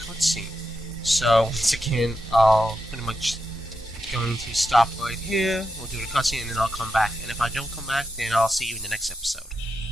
So, once again, I'll pretty much going to stop right here. We'll do the cutscene, and then I'll come back. And if I don't come back, then I'll see you in the next episode.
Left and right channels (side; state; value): both; normal; correlation 0.86